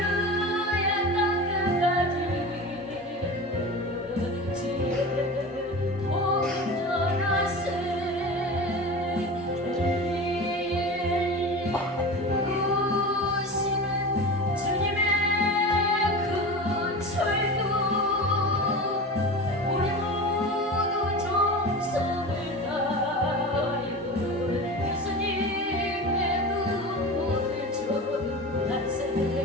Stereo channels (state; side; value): normal; both; correlation 0.30